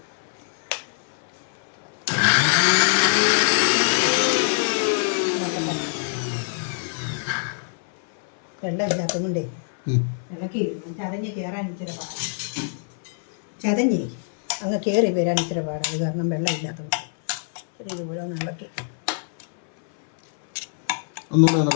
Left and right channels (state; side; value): silent; right; 58 dB below the other